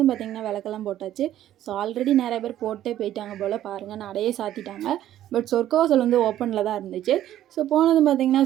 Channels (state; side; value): quieter; left; 12.4 dB